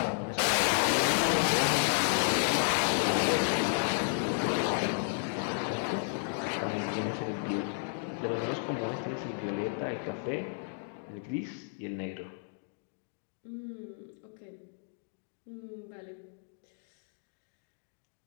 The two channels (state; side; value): silent; right; digital silence